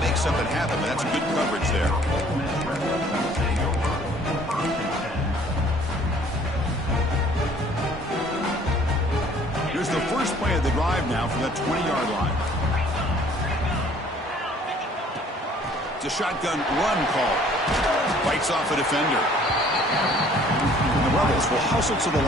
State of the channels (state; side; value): normal; both; correlation 0.56